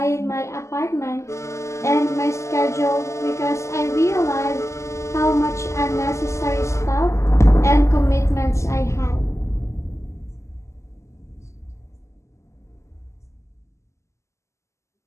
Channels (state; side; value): late; right; 0.14 ms